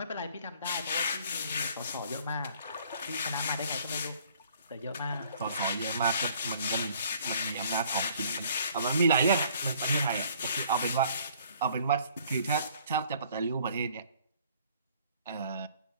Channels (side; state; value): both; inverted; correlation -0.58